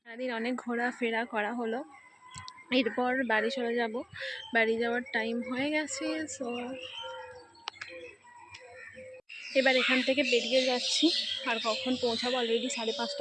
সারাদিন অনেক ঘোরাফেরা করা হলো, এরপর বাড়ি চলে যাব। বাড়ি যাওয়ার টাইম হয়ে গেছে, সো এবার এখান থেকে বেরিয়ে যাচ্ছি। আর কখন পৌঁছাবো, অলরেডি 5:30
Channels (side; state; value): both; identical; correlation 1.00